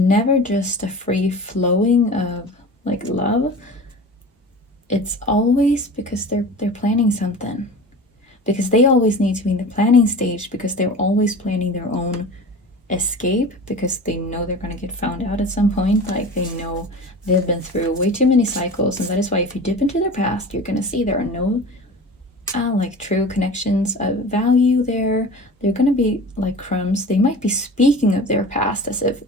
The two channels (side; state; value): both; normal; correlation 0.36